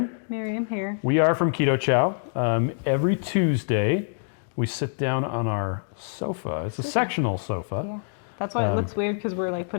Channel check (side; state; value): right; silent; digital silence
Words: Miriam here. We are from Keto Chow. Every Tuesday, we sit down on our sofa. It's a sectional sofa. Yeah. That's why it looks weird, because we're like